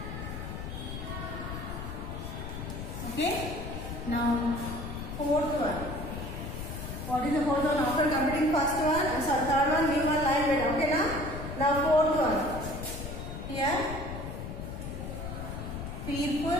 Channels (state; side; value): noise; left; rumble, 7 dB below the sound